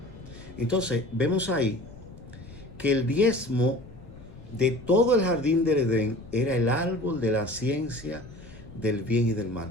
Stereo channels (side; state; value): left; noise; rumble, 19 dB below the sound